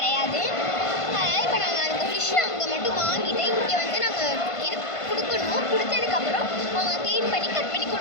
அதனால் இப்போ நாங்கள் அந்த ஃபிஷ்ஷை அங்கே மட்டும் வாங்கிட்டு இங்கே வந்து நாங்கள் இது கொடுக்கணும். கொடுத்ததுக்கப்புறம் அவங்க க்ளீன் பண்ணி கட் பண்ணி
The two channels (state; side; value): late; right; 1.5 ms